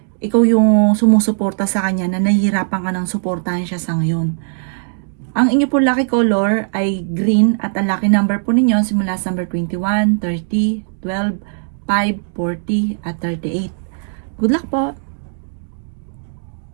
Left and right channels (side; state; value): left; silent; digital silence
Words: ikaw yung sumusuporta sa kanya na nahihirapan ka ng suportahan siya sa ngayon. Ang inyo po lucky color ay green at ang lucky number po ninyo simula sa number 21, 30, 12, 5, 40 at 38. Good luck po!